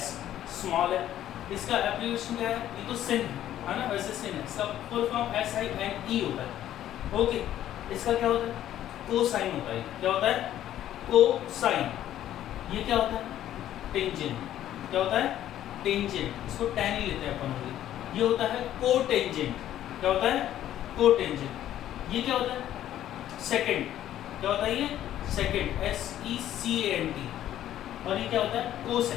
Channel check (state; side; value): quieter; right; 12.1 dB